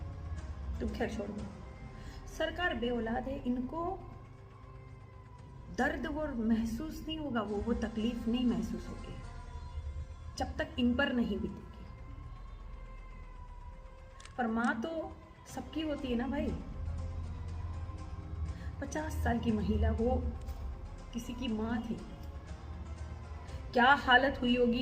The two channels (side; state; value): both; identical; correlation 1.00